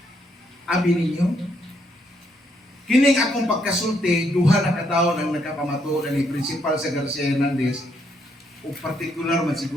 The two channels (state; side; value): normal; both; correlation 0.74